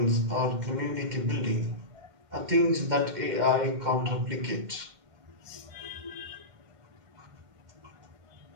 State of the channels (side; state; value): left; late; 2.1 ms